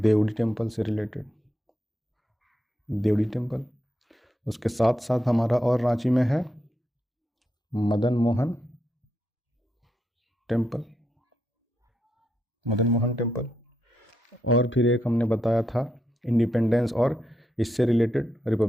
टेम्पल से रिलेटेड, देवड़ी टेम्पल। उसके साथ साथ हमारा और रांची में है मदन मोहन टेम्पल, और फिर एक हमने बताया था इंडिपेंडेंस और इससे रिलेटेड,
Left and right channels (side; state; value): both; normal; correlation 0.82